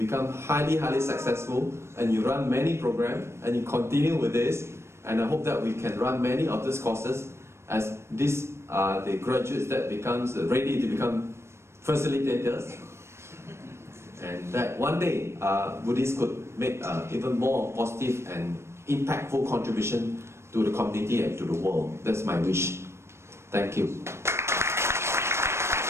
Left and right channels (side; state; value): left; late; 0.13 ms